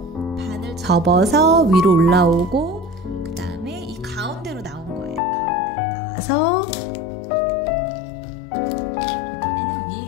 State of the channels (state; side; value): drops out; right; at 5.2 s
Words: 반을 접어서 위로 올라오고 그 다음에 이 가운데로 나온 거예요. 가운데로 나와서 이번에는